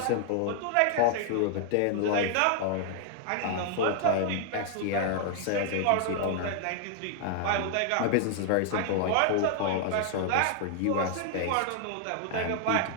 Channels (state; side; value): different; both; correlation 0.00